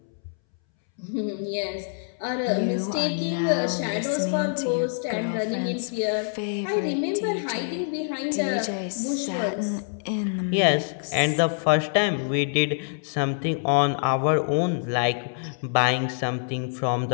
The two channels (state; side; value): silent; right; 61 dB below the other